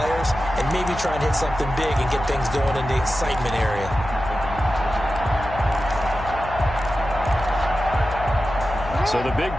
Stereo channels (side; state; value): left; noise; hum, 11 dB below the sound